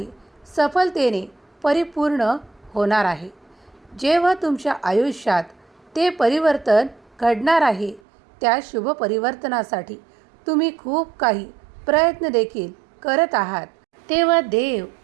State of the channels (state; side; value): drops out; left; at 8.0 s